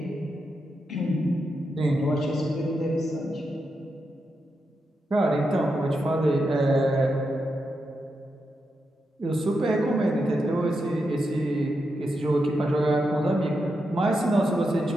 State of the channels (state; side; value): normal; both; correlation 0.86